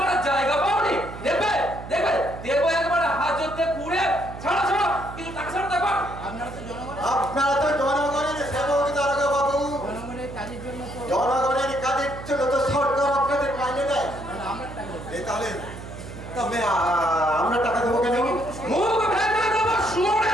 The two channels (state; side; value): noise; right; hum, 12 dB below the sound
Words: জায়গা পাওনি দেবে দেবো একবার হাজতে পুড়ে ছাড়ো কিছু টাকা ছাড়ো দেখো আপনারা তো জনগণের আপনারা তো জনগণের সেবক দারোগা বাবু জনগণের কাজের জন্য তো জনগণের কাজের জন্য তো সরকার আপনাদের মাইনে দেয় তাহলে আমরা টাকা দেবো। এই তাহলে তবে আমরা টাকা দেবো কেন মুখ ভেঙে দেবো